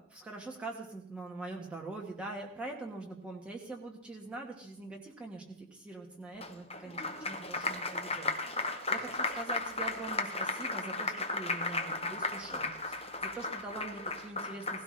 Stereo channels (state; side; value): normal; both; correlation -0.18